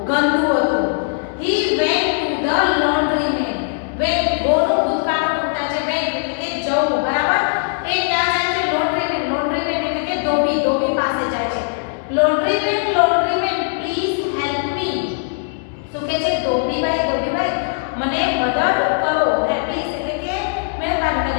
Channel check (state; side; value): silent; right; 66 dB below the other